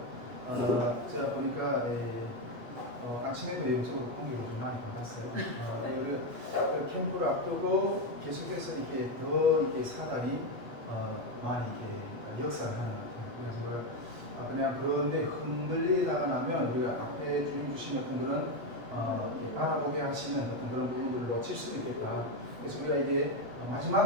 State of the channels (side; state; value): left; late; 8.0 ms